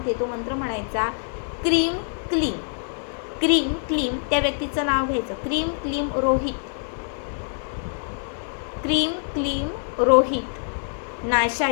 तो मंत्र म्हणायचा, क्रीम क्लीम. क्रीम क्लीम त्या व्यक्तीचं नाव घ्यायचं, क्रीम क्लीम रोहित. क्रीम क्लीम रोहित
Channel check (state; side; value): silent; right; 58 dB below the other